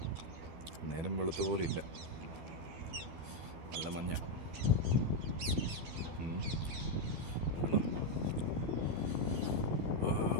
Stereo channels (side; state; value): left; late; 12 ms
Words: നേരം വെളുത്ത പോലെ ഇല്ല, നല്ല മഞ്ഞ.